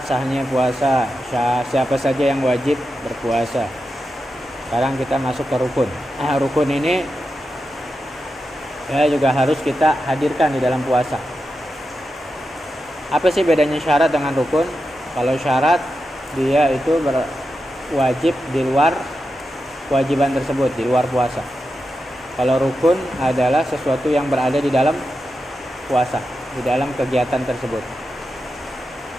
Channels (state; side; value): normal; both; correlation 0.89